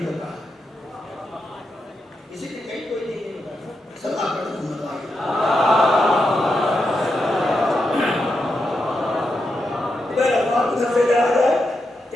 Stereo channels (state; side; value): normal; both; correlation 0.85